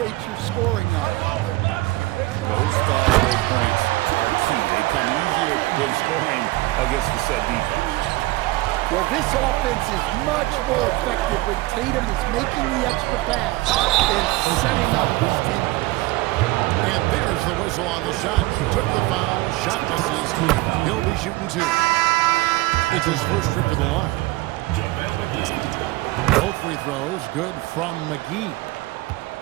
your scoring up. Those fast break points are key. They come easier than scoring against the set defense. Well, this offense is much more effective when Tatum is making the extra pass and setting up his teammates. And there's the whistle on the shot. Took the foul. Shot misses. He'll be shooting two. It's his first trip to the line. Both free throws good from McGee.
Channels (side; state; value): left; quieter; 19.8 dB